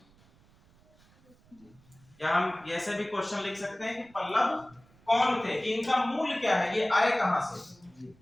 या हम ऐसे भी क्वेश्चन लिख सकते हैं कि पल्लव कौन थे, कि इनका मूल क्या है, ये आए कहां से।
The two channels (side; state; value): right; noise; rumble, 29 dB below the sound